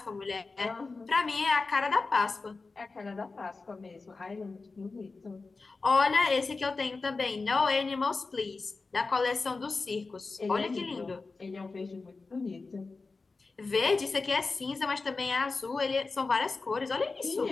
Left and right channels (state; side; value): quieter; right; 3.9 dB